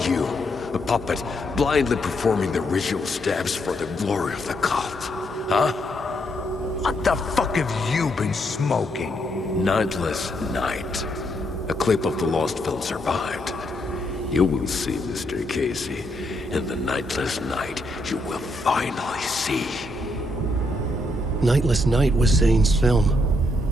A puppet blindly performing the ritual steps for the glory of the cult. Huh? What the fuck have you been smoking? Nightless Night. A clip of the lost film survived. You will see, Mr. Casey. In the Nightless Night, you will finally see. Nightless Night was Zane's film.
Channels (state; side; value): normal; both; correlation 0.76